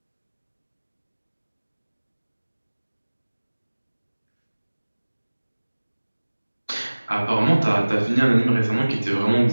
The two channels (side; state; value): both; inverted; correlation -1.00